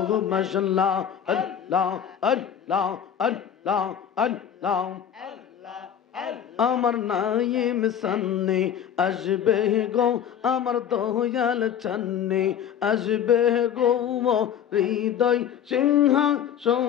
মাশাআল্লাহ আল্লাহ আল্লাহ আল্লাহ আল্লাহ আমার নাইম সান্নে আসবে গো আমার দয়াল চান্নে আসবে গো হৃদয়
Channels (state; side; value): quieter; right; 9.0 dB